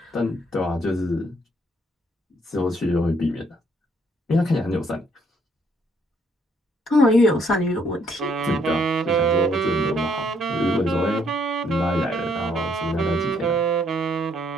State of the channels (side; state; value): both; normal; correlation 0.68